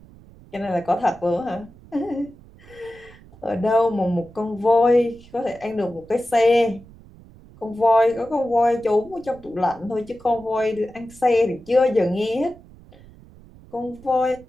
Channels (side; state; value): right; noise; rumble, 23 dB below the sound